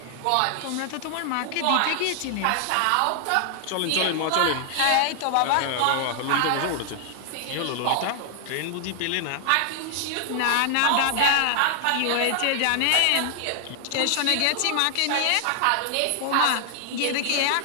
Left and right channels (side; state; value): both; different; correlation 0.00